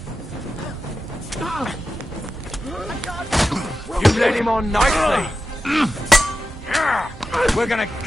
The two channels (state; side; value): normal; both; correlation 0.91